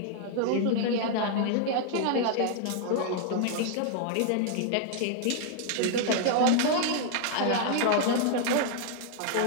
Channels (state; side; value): different; both; correlation 0.00